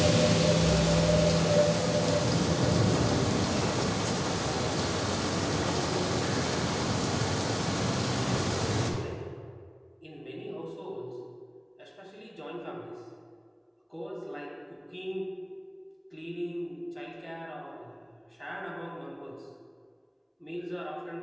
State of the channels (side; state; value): both; identical; correlation 1.00